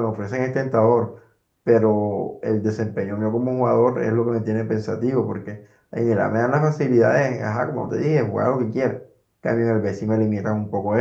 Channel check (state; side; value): identical; both; correlation 1.00